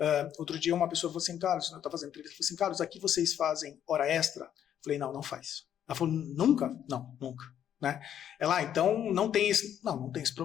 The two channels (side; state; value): right; quieter; 9.9 dB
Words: outro dia uma pessoa falou assim, Carlos, eu estava fazendo entrevista, falou assim, Carlos, aqui vocês fazem hora extra? Eu falei, não faz. Ela falou, nunca? Não, nunca. Né? Ela, então, não tem esse